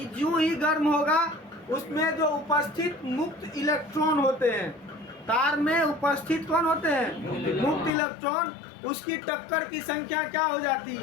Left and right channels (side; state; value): right; drops out; at 7.9 s